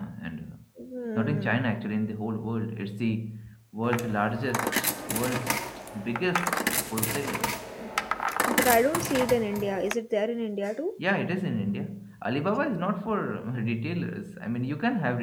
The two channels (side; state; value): both; identical; correlation 1.00